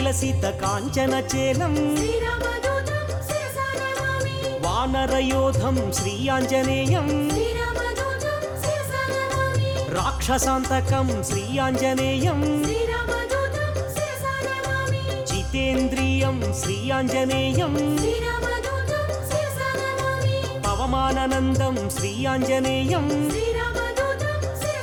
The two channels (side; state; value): both; identical; correlation 1.00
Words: కాంచన చేలం శ్రీరామదూతం శిరసా నమామి వానరయోధం శ్రీ ఆంజనేయం శ్రీరామదూతం శిరసా నమామి రాక్షసాంతకం శ్రీ ఆంజనేయం శ్రీరామదూతం శిరసా నమామి జితేంద్రియం శ్రీ ఆంజనేయం శ్రీరామదూతం శిరసా నమామి పవమాననందం శ్రీ ఆంజనేయం శ్రీరామదూతం